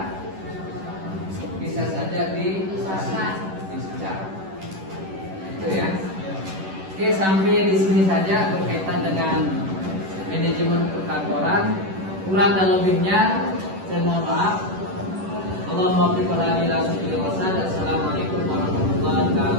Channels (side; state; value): left; late; 11 ms